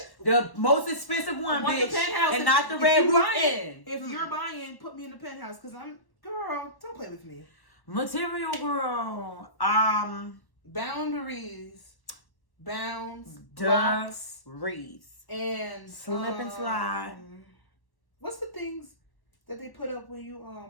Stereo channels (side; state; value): right; late; 1.1 ms